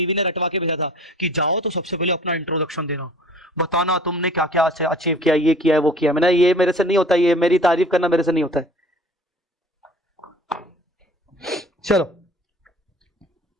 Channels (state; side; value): normal; both; correlation 0.47